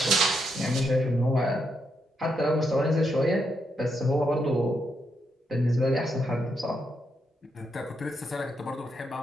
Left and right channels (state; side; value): normal; both; correlation 0.80